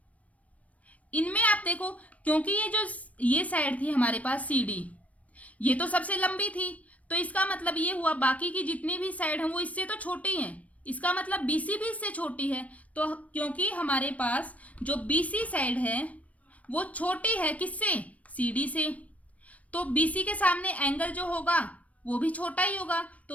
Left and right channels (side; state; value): right; late; 0.067 ms